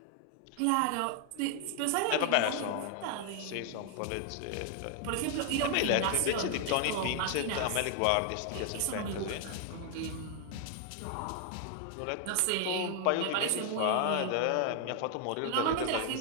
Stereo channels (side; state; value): both; different; correlation 0.00